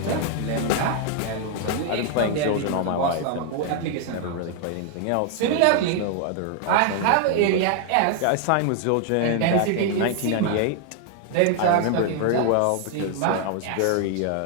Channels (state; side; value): different; both; correlation 0.00